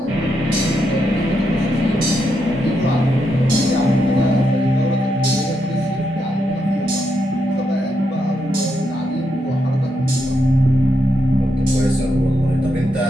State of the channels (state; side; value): normal; both; correlation 0.81